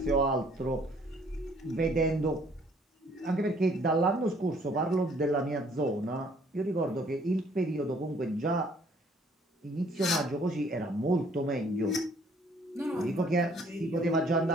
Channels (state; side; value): normal; both; correlation 0.61